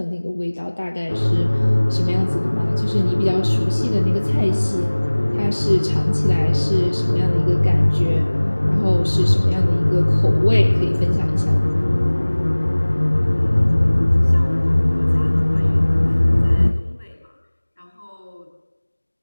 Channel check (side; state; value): both; inverted; correlation -1.00